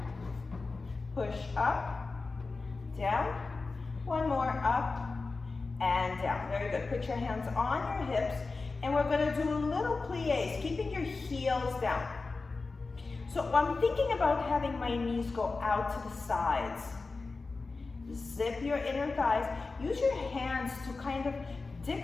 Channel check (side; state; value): right; quieter; 3.9 dB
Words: Push up, down. One more, up and down. Very good. Put your hands on your hips, and we're going to do little plies, keeping your heels down. So I'm thinking about having my knees go out to the sides. Zip your inner thighs. Use your hands to kind of